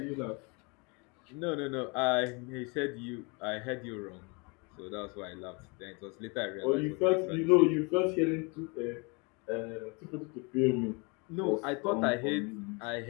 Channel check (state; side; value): quieter; right; 30.7 dB